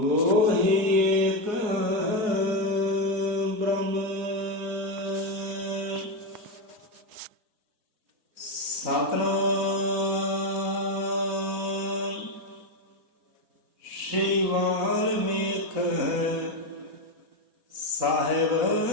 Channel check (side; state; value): left; late; 4.0 ms